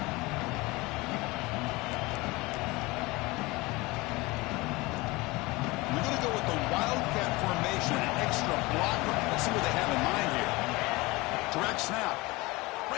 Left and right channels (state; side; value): quieter; right; 22.7 dB